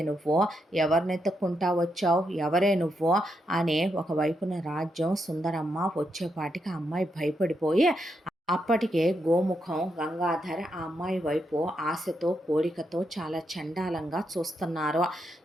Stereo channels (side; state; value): both; normal; correlation 0.81